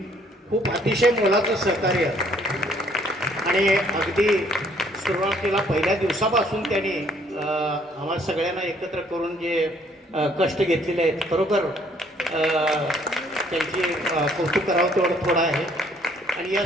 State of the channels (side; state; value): both; normal; correlation 0.63